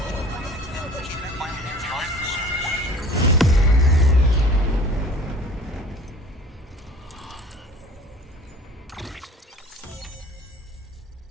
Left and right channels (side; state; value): both; normal; correlation 0.46